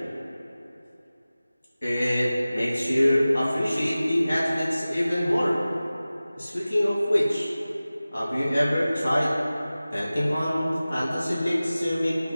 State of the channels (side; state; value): both; inverted; correlation -0.97